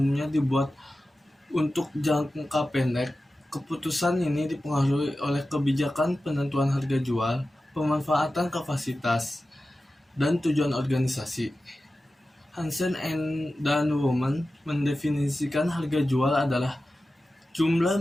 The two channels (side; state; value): both; normal; correlation 0.94